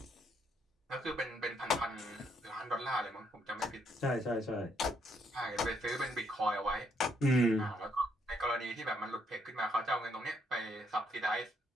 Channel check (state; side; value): normal; both; correlation 0.73